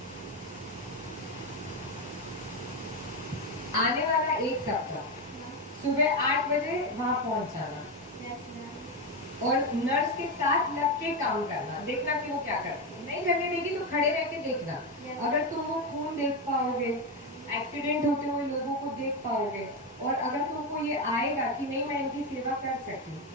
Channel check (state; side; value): normal; both; correlation 0.10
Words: आने वाला एक सप्ताह सुबह 8 बजे वहां पहुंच जाना और नर्स के साथ लग के काम करना, देखना कि वो क्या करती है। नहीं करने देगी तो खड़े रह के देखना। अगर तुम वो खून देख पाओगे, एक्सीडेंट होते हुए लोगों को देख पाओगे, और अगर तुमको ये आएगा कि नहीं मैं इनकी सेवा कर सकती हूँ,